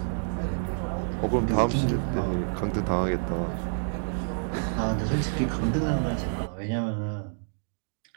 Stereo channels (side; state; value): left; silent; digital silence